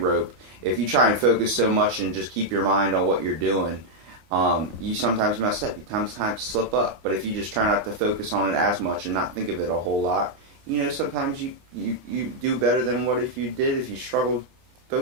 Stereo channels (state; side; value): late; left; 25 ms